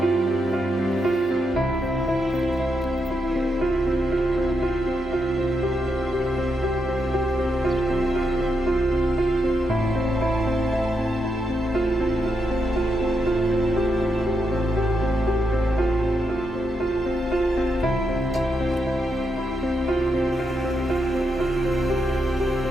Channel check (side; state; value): both; normal; correlation 0.82